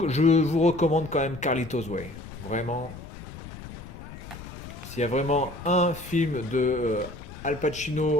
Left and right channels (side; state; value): left; noise; rumble, 14 dB below the sound